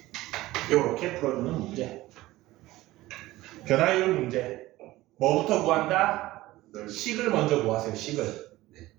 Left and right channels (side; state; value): left; quieter; 17.5 dB